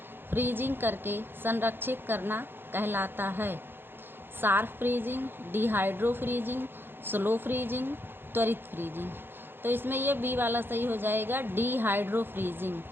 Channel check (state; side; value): late; left; 0.10 ms